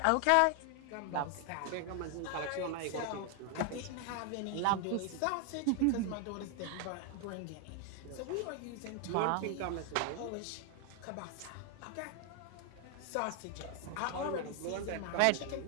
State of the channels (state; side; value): different; both; correlation 0.00